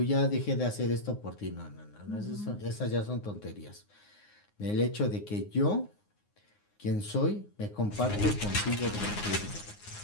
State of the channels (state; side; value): late; right; 9.6 ms